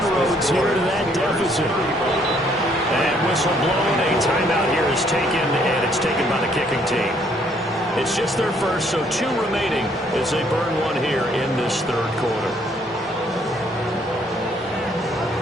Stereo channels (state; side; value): normal; both; correlation 0.66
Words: here to that deficit. And whistle blown, a timeout here is taken, and it's taken by the kicking team. It's just their first, so 2 remaining as they burn one here in this third quarter.